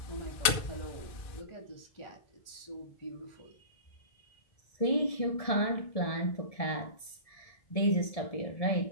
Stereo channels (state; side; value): late; right; 2.3 ms